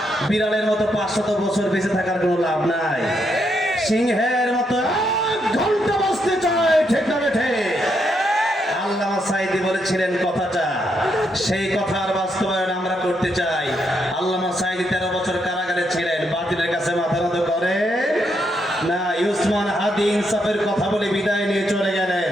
বিড়ালের মতো 500 বছর বেঁচে থাকার কোনো লাভ নাই। সিংহের মতো 1 ঘন্টা বাঁচতে চাই, ঠিক না বেঠে? আল্লামা সাঈদী বলেছিলেন কথাটা, সেই কথার বাস্তবায়ন আমরা করতে চাই। আল্লামা সাঈদী 13 বছর কারাগারে ছিলেন, বাতিলের কাছে মাথা নত করে না। উসমান হাদি ইনসাফের কথা বলে বিদায় নিয়ে চলে গেলেন,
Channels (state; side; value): normal; both; correlation 0.78